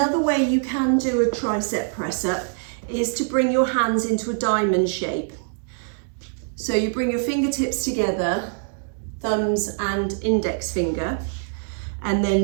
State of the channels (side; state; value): left; silent; digital silence